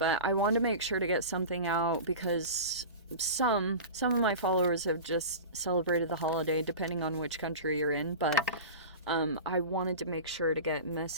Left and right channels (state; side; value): inverted; both; correlation -0.31